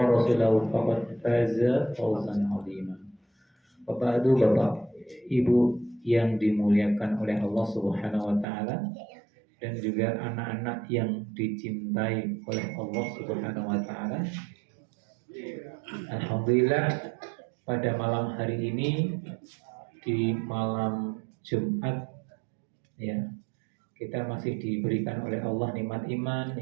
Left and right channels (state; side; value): drops out; left; at 8.5 s